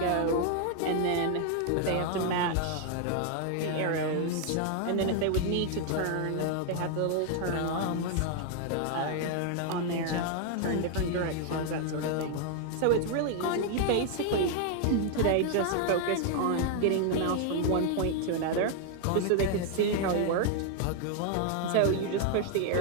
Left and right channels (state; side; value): different; both; correlation 0.00